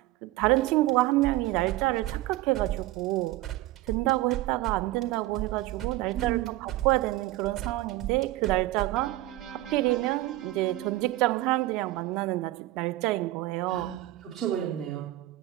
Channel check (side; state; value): left; quieter; 16.9 dB